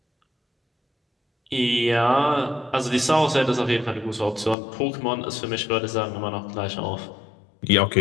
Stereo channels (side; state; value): right; drops out; at 4.5 s